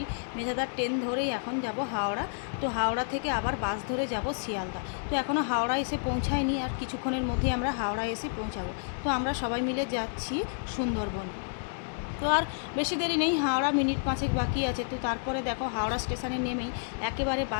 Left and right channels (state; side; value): silent; right; digital silence